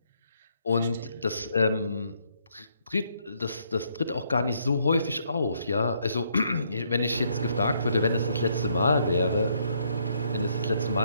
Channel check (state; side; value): inverted; both; correlation -0.72